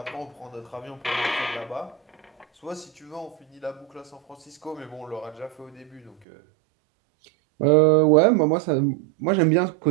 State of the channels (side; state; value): left; drops out; at 6.2 s